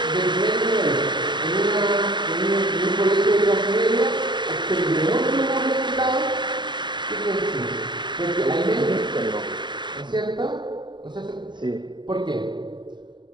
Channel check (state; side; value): late; left; 0.22 ms